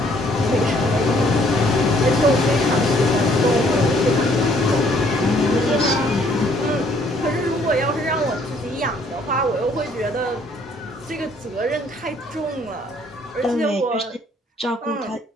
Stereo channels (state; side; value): normal; both; correlation 0.63